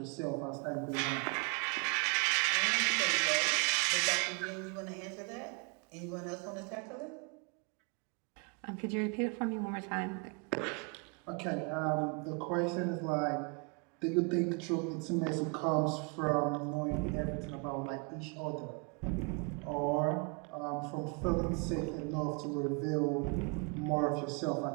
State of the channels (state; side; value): quieter; left; 34.6 dB